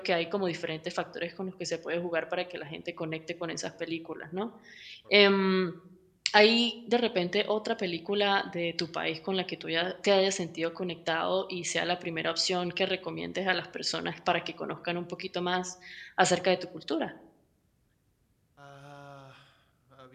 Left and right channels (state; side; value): identical; both; correlation 1.00